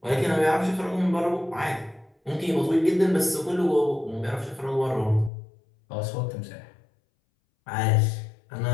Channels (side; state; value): right; drops out; at 5.3 s